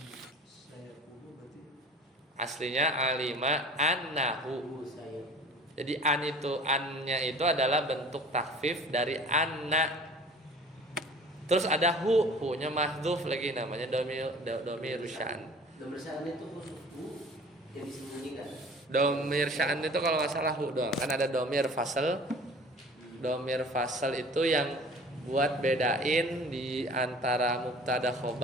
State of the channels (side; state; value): both; normal; correlation 0.44